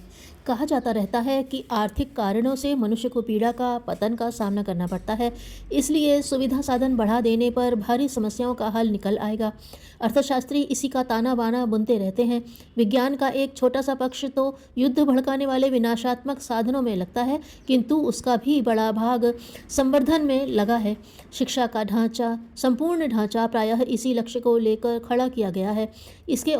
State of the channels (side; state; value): both; identical; correlation 1.00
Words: कहा जाता रहता है कि आर्थिक कारणों से मनुष्य को पीड़ा का पतन का सामना करना पड़ता है, इसलिए सुविधा साधन बढ़ा देने पर भारी समस्याओं का हल निकल आएगा। अर्थशास्त्री इसी का ताना बाना बुनते रहते हैं। विज्ञान का एक छोटा सा पक्ष तो युद्ध भड़काने वाले विनाशात्मक साधनों में लगता है, किंतु उसका भी बड़ा भाग संवर्धन में लगा है। शिक्षा का ढांचा, संपूर्ण ढांचा प्रायः इसी लक्ष्य को लेकर खड़ा किया गया है। इसके